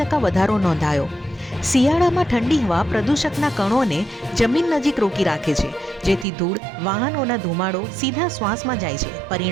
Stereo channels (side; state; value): left; drops out; at 6.2 s